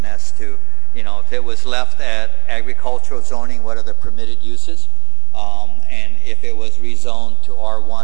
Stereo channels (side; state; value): left; quieter; 22.9 dB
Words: as to, if it was left at agricultural zoning, what are the permitted uses? And if it was rezoned to